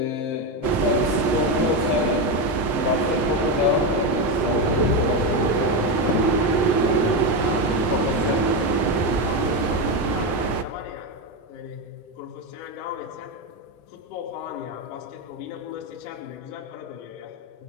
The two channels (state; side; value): late; right; 7.2 ms